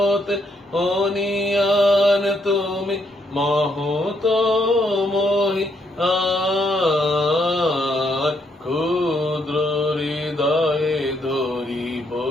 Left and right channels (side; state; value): both; normal; correlation 0.74